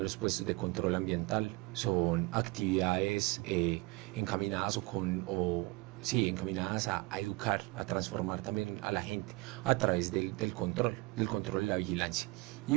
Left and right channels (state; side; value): quieter; left; 24.6 dB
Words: puestos de control ambiental. Son actividades encaminadas encaminadas a educar, a transformar también a la gente a través del control y la vigilancia, y